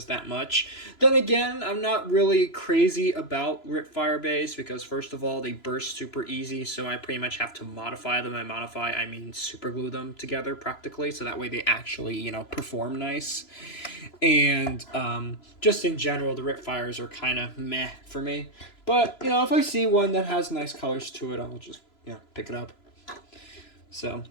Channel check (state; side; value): late; right; 3.0 ms